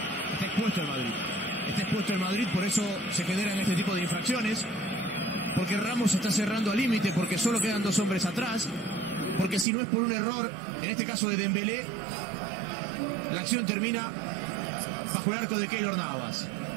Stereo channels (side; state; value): left; drops out; at 9.7 s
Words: Está expuesto el Madrid. Está expuesto el Madrid, por eso se generan este tipo de infracciones. Porque Ramos está cerrando al límite, porque solo quedan 2 hombres atrás. Porque si no es por un error, en este caso de Dembélé, la acción termina bajo el arco de Keylor Navas.